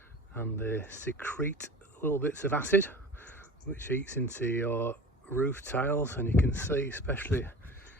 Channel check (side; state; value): both; normal; correlation 0.38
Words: and they secrete little bits of acid which eats into your roof tiles, and you can see, especially,